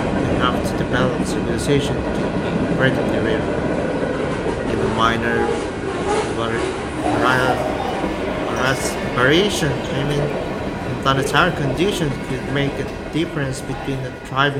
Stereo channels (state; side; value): identical; both; correlation 1.00